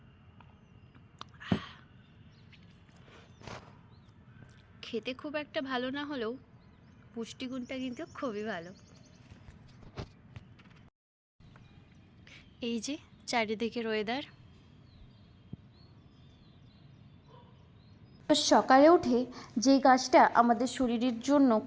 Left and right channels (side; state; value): both; identical; correlation 1.00